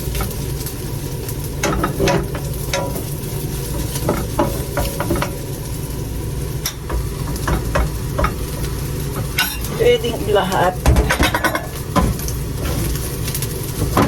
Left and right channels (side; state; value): both; identical; correlation 1.00